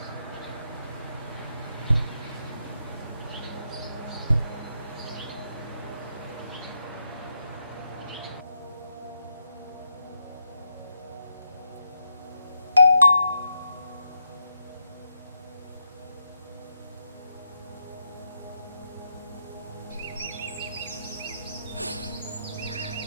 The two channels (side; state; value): both; inverted; correlation -0.83